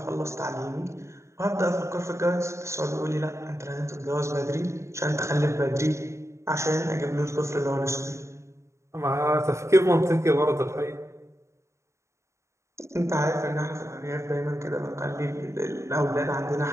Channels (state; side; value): late; left; 0.14 ms